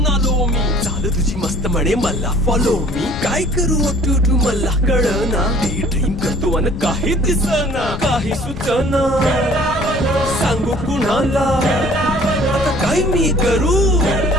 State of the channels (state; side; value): noise; left; rumble, 8 dB below the sound